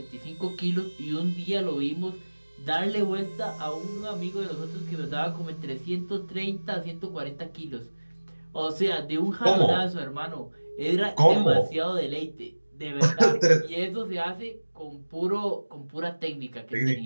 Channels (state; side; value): inverted; both; correlation -1.00